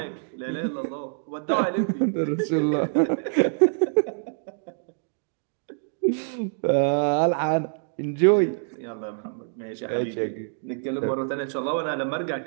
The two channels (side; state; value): left; silent; digital silence